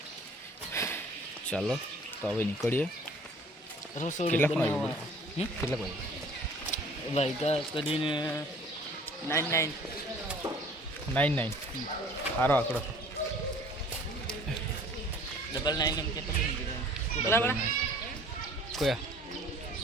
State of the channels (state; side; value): normal; both; correlation 0.51